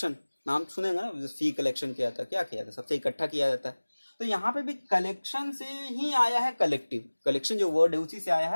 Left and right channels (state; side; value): inverted; both; correlation -1.00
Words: नाम सुनेगा ना, फी कलेक्शन किया था, क्या किया था? सबसे इकट्ठा किया जाता है। तो यहाँ पे भी कलेक्शन से ही आया है कलेक्टिव। कलेक्शन जो वर्ड है उसी से आया